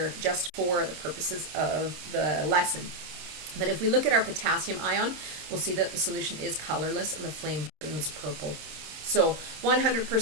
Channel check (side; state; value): left; late; 26 ms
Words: just for the purposes of the lesson. But if we look at our potassium ion, we'll see that the solution is colorless and the flame burns purple. So